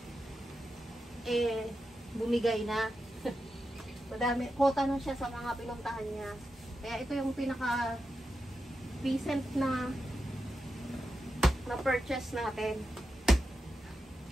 bumigay na. Madami, quota na siya sa mga pinuntahan niya. Kaya ito yung pinaka recent na purchase natin.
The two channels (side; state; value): both; normal; correlation 0.89